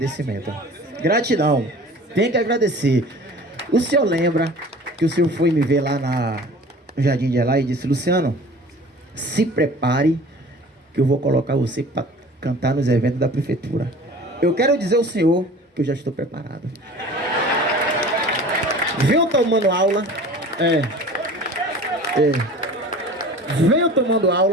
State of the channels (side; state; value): both; normal; correlation 0.43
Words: Gratidão, tem que agradecer. O senhor lembra que o senhor foi me ver lá no Jardim de Elá e disse: Luciano, se prepare que eu vou colocar você para cantar nos eventos da prefeitura. Eu quero dizer ao senhor que eu já estou preparado. Venho tomando aula. Venho